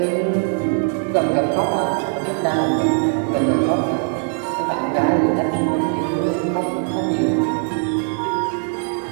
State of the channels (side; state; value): left; silent; 57 dB below the other